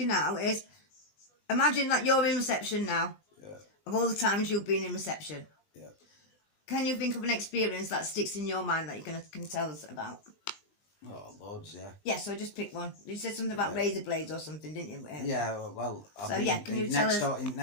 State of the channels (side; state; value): right; late; 20 ms